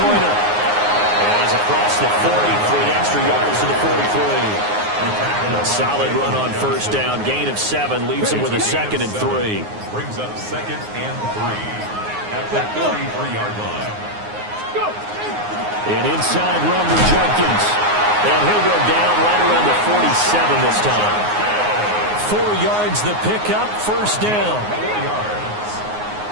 And he's across the 40 for the extra yards to the 43. A solid run on first down. Gain of 7 leaves him with a 2nd and 3. Brings up 2nd and 3 at the 33-yard line. An inside run for Jenkins. And he'll go down right around the 47 this time. 4 yards the pickup, first down. 4 yards.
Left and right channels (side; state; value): left; late; 9.6 ms